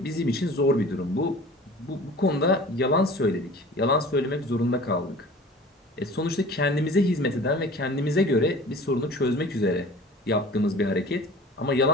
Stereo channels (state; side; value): normal; both; correlation 0.43